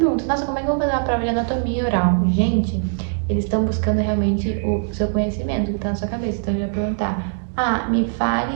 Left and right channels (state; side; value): silent; left; digital silence